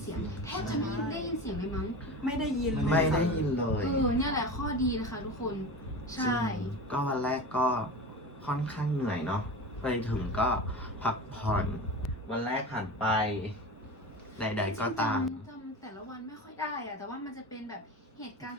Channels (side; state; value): both; normal; correlation 0.29